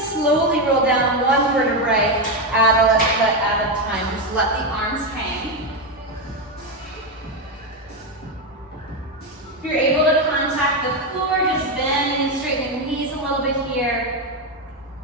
slowly roll down 1 vertebrae at a time. Just let the arms hang. If you're able to contact the floor, just bending and straightening the knees a little bit here.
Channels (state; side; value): normal; both; correlation 0.09